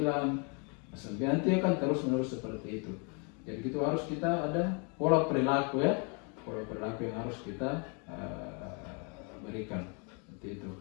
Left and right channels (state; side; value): quieter; right; 35.5 dB